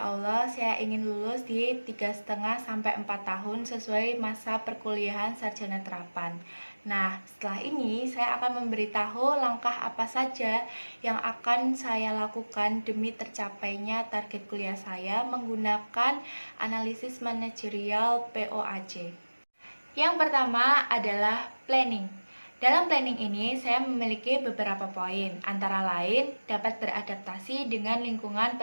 Allah saya ingin lulus di 3,5 sampai 4 tahun sesuai masa perkuliahan sarjana terapan. Nah, setelah ini saya akan memberitahu langkah apa saja yang akan saya lakukan demi tercapainya target kuliah saya menggunakan analisis manajerial POAC. Yang pertama adalah planning. Dalam planning ini, saya memiliki beberapa poin, antara lain dapat beradaptasi dengan lingkungan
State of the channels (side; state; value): both; inverted; correlation -1.00